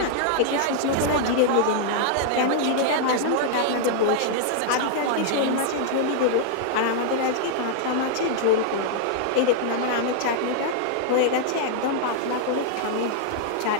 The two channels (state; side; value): different; both; correlation -0.01